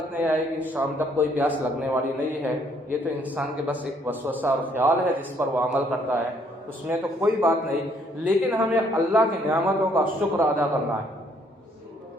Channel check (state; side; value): normal; both; correlation 0.66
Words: نہیں آئے گی. شام تک کوئی پیاس لگنے والی نہیں ہے. یہ تو انسان کے بس ایک وسوسہ اور خیال ہے جس پر وہ عمل کرتا ہے، اس میں تو کوئی بات نہیں. لیکن ہمیں اللہ کی نعمتوں کا شکر ادا کرنا ہے